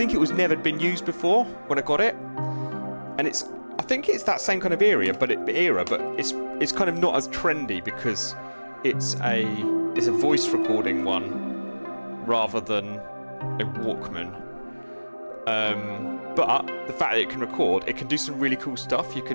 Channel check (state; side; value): inverted; both; correlation -1.00